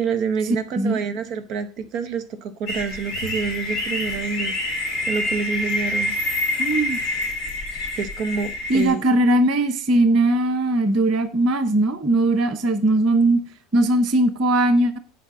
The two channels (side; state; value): both; normal; correlation 0.57